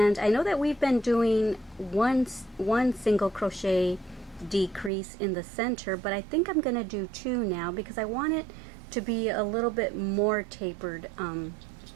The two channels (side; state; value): left; drops out; at 4.9 s